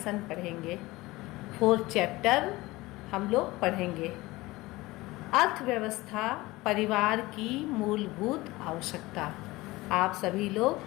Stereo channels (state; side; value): quieter; right; 20.1 dB